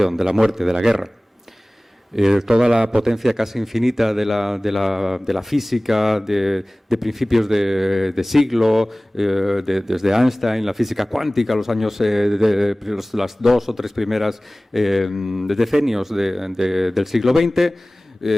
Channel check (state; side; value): normal; both; correlation 0.98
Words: de la muerte, de la guerra. Toda la potencia casi infinita de la física de principios de siglo, desde Einstein, la física cuántica, los años las 2 o 3 primeras decenios del siglo XX,